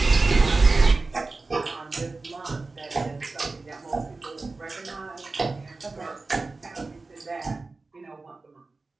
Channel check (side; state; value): left; quieter; 3.6 dB